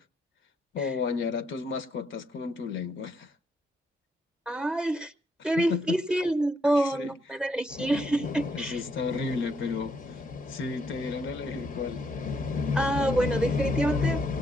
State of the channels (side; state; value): both; normal; correlation 0.75